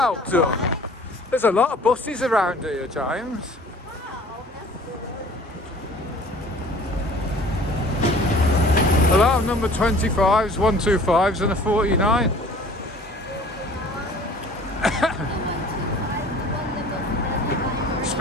done. There's a lot of buses around here, James. A lot of number 25s, 125s and a 49.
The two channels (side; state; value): both; normal; correlation 0.49